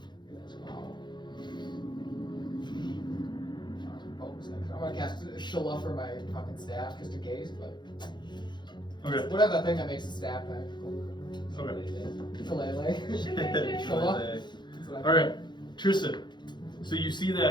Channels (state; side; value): late; right; 0.22 ms